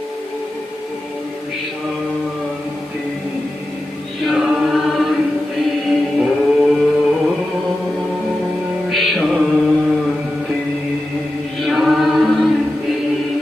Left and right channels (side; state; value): both; normal; correlation 0.92